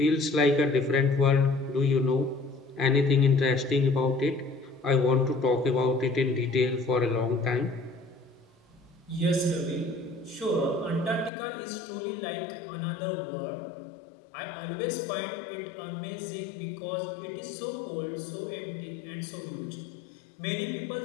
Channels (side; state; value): right; drops out; at 11.3 s